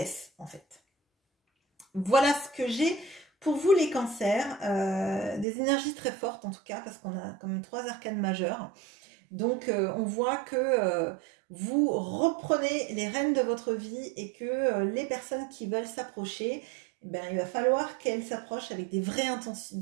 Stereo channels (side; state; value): left; drops out; at 5.5 s